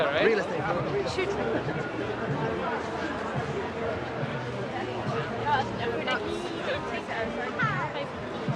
right? Real estate. Shoot.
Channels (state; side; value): identical; both; correlation 1.00